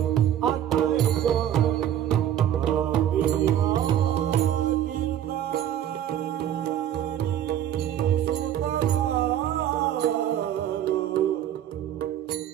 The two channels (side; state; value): left; quieter; 10.8 dB